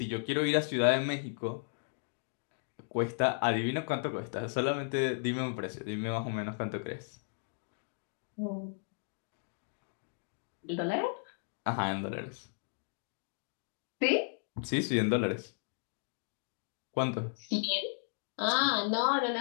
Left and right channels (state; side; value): silent; right; digital silence